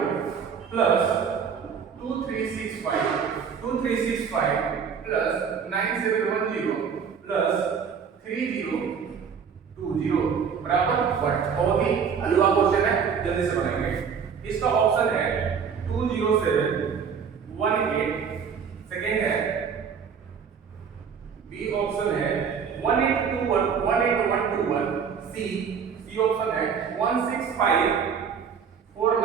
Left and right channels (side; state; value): left; quieter; 6.7 dB